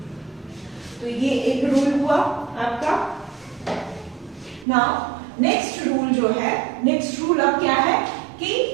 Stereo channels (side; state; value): left; drops out; at 4.7 s